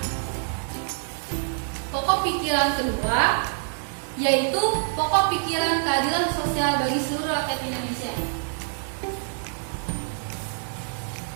Pokok pikiran kedua yaitu pokok pikiran keadilan sosial bagi seluruh rakyat Indonesia.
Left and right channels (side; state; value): left; silent; digital silence